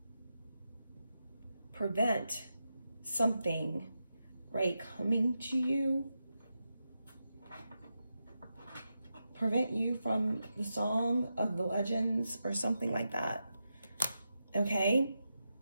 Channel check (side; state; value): both; inverted; correlation -0.88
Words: prevent something, right, coming to you, prevent you from the song of the legends or something like that, okay?